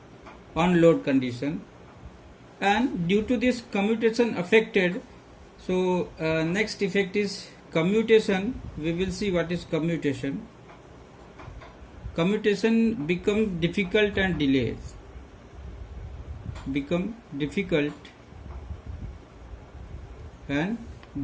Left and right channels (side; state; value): both; identical; correlation 1.00